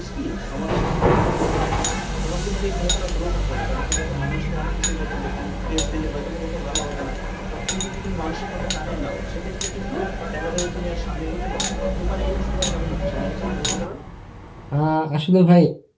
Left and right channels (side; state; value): both; identical; correlation 1.00